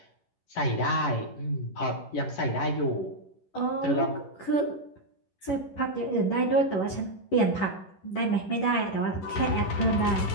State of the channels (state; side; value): late; right; 11 ms